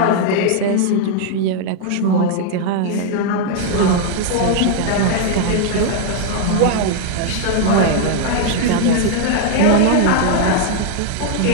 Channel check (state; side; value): different; both; correlation 0.00